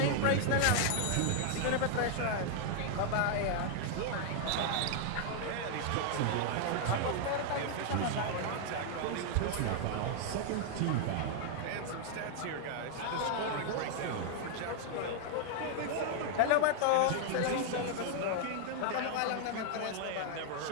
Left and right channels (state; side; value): different; both; correlation 0.00